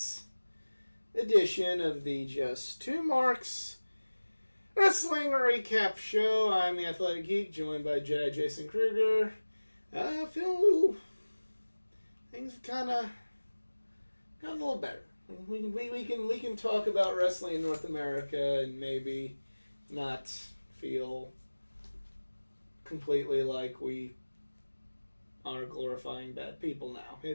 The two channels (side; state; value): both; inverted; correlation -1.00